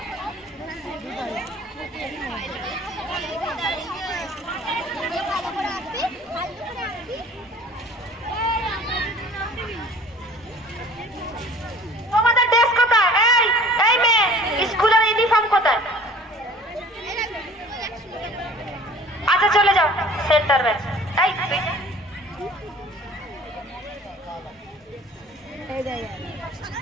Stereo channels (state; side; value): normal; both; correlation 0.47